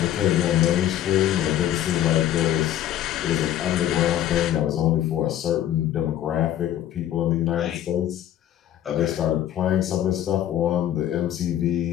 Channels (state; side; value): quieter; right; 11.7 dB